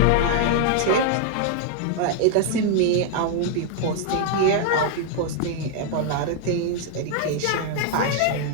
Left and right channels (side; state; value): both; different; correlation 0.00